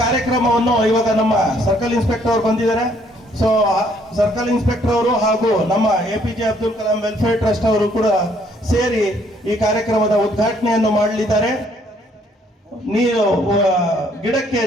ಇವಾಗ ನಮ್ಮ ಸರ್ಕಲ್ ಇನ್ಸ್ಪೆಕ್ಟರ್ ಅವರು ಬಂದಿದ್ದಾರೆ. ಸೊ ಸರ್ಕಲ್ ಇನ್ಸ್ಪೆಕ್ಟರ್ ಅವರು ಹಾಗೂ ನಮ್ಮ APJ Abdul Kalam welfare trust ಅವರು ಕೂಡ ಸೇರಿ ಈ ಕಾರ್ಯಕ್ರಮದ ಉದ್ಘಾಟನೆಯನ್ನು ಮಾಡಲಿದ್ದಾರೆ. ನೀರು ಗಿಡಕ್ಕೆ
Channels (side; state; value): both; normal; correlation 0.65